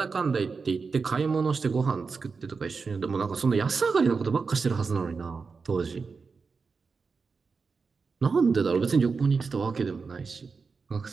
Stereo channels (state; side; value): quieter; left; 4.9 dB